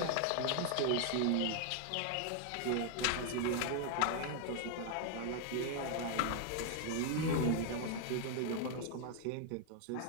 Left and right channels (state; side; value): different; both; correlation 0.00